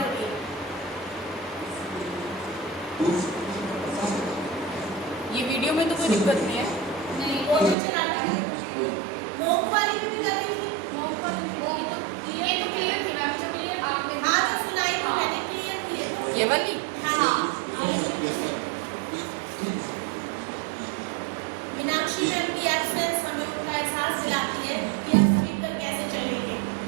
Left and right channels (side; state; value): left; drops out; at 7.8 s